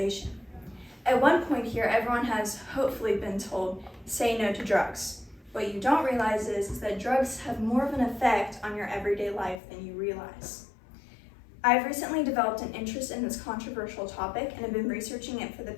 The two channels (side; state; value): right; drops out; at 9.6 s